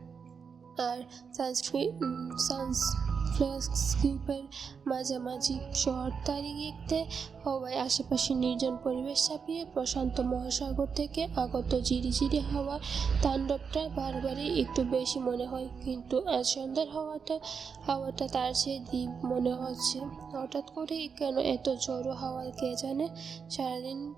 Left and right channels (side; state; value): left; quieter; 6.0 dB